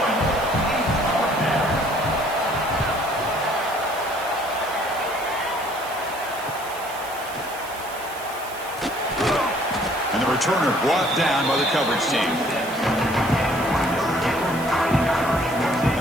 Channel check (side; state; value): right; noise; hiss, 16 dB below the sound